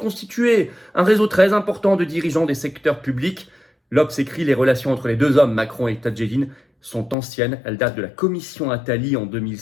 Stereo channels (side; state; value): right; drops out; at 7.2 s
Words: un réseau très important de dirigeants des secteurs publics. L'Obs écrit les relations entre les deux hommes, Macron et Tadjedine, sont anciennes. Elles datent de la commission Attali en